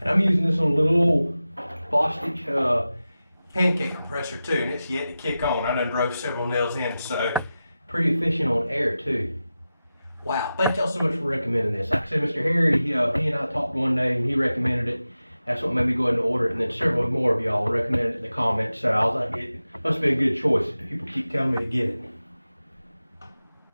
I'm using this on a little old Bostitch pancake compressor too, and it's yet to kick on. I done drove several nails in, so pretty efficient on air too. Wow, thank y'all so much for recommending this. Like I said, Mr. Harry, he and I talked one day and he recommended it. That's what made me go ahead and order it, and then several more of y'all recommended it in the comments, so I was like, it must be a good choice. People keep telling me to get it.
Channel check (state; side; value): inverted; both; correlation -0.94